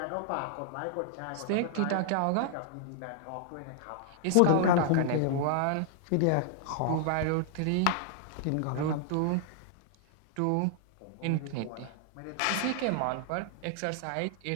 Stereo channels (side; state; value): both; different; correlation -0.01